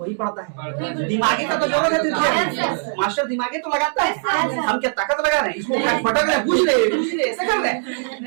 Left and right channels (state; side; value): silent; left; 65 dB below the other